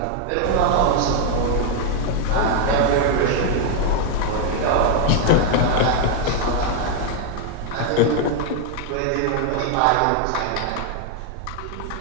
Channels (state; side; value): different; both; correlation 0.00